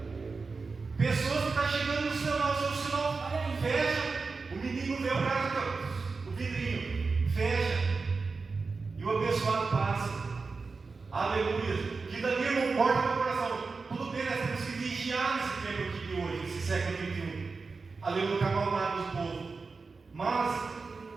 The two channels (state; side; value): quieter; left; 4.4 dB